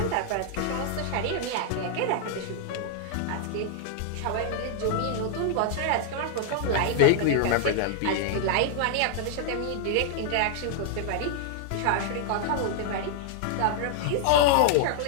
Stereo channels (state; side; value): different; both; correlation -0.01